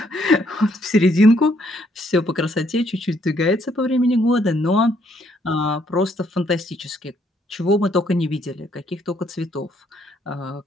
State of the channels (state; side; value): normal; both; correlation 0.70